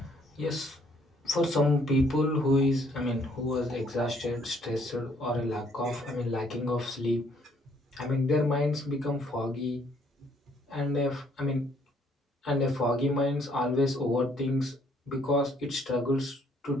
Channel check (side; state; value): both; normal; correlation 0.66